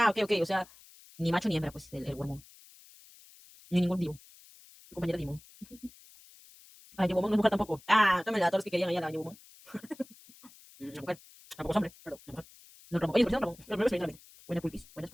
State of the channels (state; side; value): noise; left; hiss, 23 dB below the sound